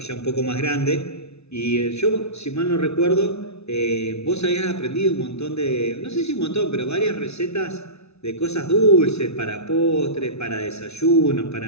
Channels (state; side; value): late; right; 0.80 ms